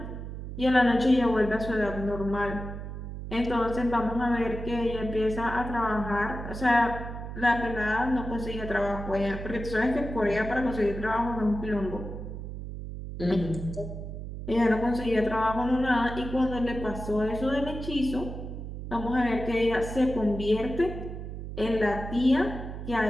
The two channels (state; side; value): noise; right; hum, 8 dB below the sound